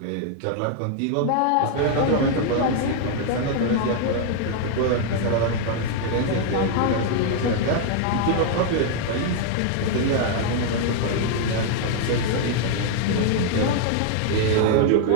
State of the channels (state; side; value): different; both; correlation 0.00